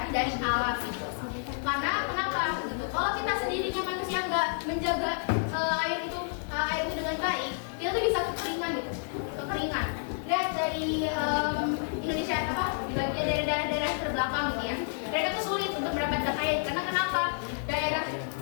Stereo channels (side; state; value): right; silent; digital silence